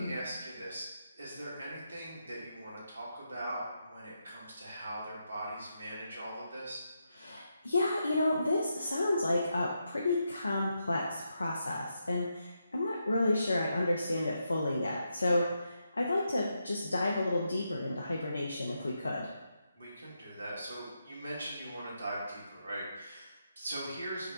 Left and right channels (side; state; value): both; inverted; correlation -0.83